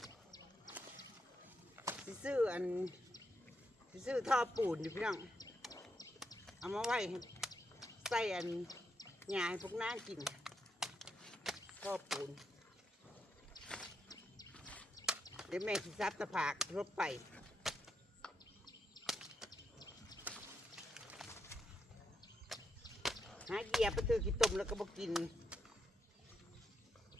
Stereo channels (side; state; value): both; normal; correlation 0.81